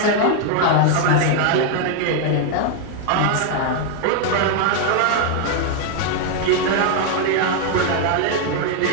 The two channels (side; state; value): both; different; correlation 0.00